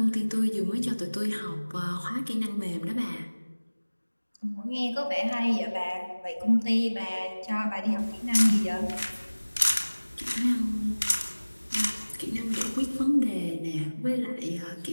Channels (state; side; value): inverted; both; correlation -1.00